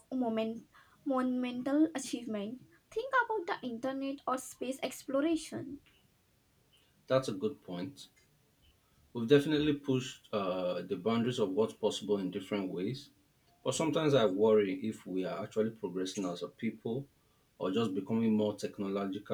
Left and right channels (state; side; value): identical; both; correlation 1.00